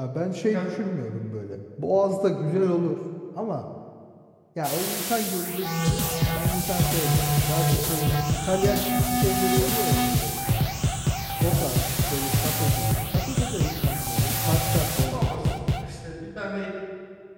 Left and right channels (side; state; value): both; identical; correlation 1.00